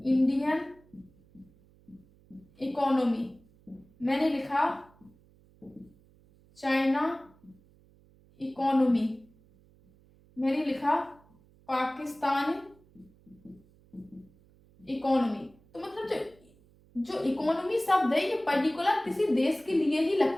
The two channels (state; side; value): noise; right; hum, 29 dB below the sound